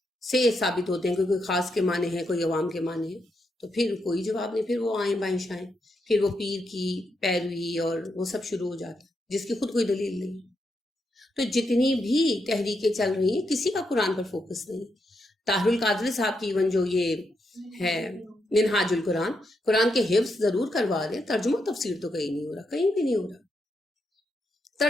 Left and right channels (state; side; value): normal; both; correlation 0.82